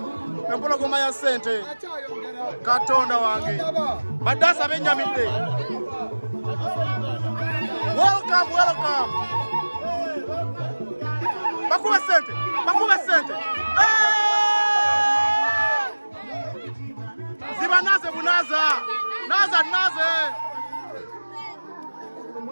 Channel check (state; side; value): inverted; both; correlation -1.00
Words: Empologoma ya sente. Katonda wange. Badasa benjamide. Welcome. Bakube sente. Zibanaze bunaza. Naze.